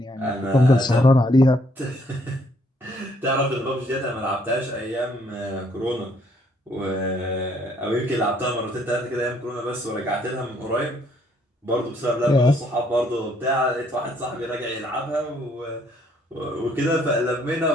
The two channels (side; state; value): both; normal; correlation 0.67